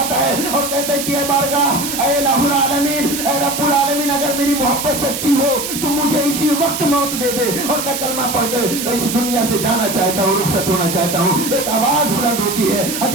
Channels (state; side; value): noise; right; hiss, 5 dB below the sound